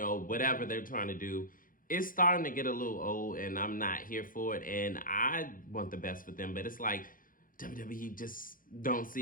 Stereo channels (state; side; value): late; right; 0.40 ms